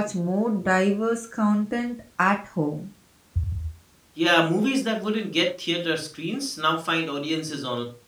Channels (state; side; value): identical; both; correlation 1.00